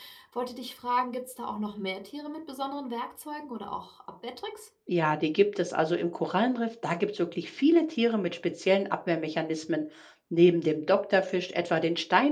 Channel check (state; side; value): identical; both; correlation 1.00